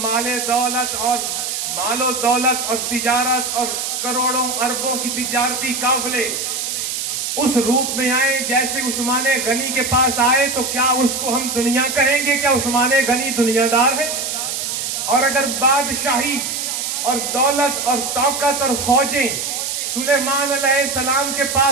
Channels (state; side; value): noise; right; hiss, 3 dB below the sound